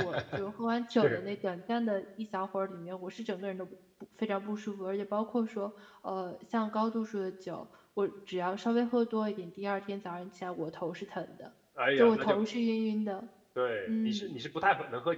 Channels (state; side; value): identical; both; correlation 1.00